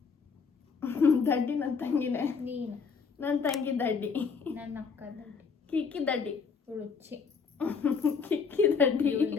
ದಡ್ಡಿ ನನ್ನ ತಂಗಿನೇ. ನೀನು ನನ್ನ ತಂಗಿ ದಡ್ಡಿ, ನನ್ನ ಅಕ್ಕ ದಡ್ಡಿ, ಕಿಕ್ಕಿ ದಡ್ಡಿ, ರುಚಿ ಕಿಕ್ಕಿ ದಡ್ಡಿ,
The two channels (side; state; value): right; quieter; 5.5 dB